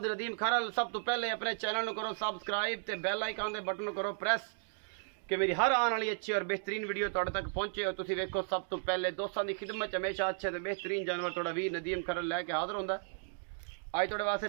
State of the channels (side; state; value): left; silent; digital silence